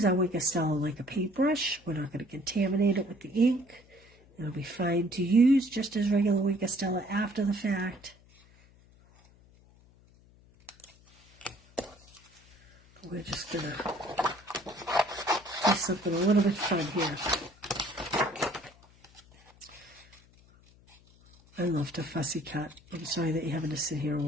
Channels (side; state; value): left; noise; hum, 27 dB below the sound